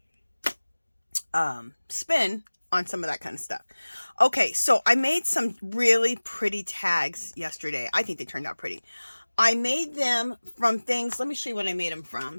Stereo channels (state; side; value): inverted; both; correlation -1.00